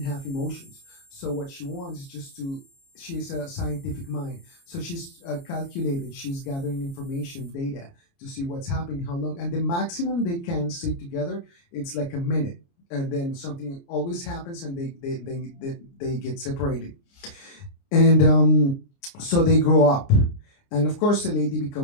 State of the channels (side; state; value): right; late; 29 ms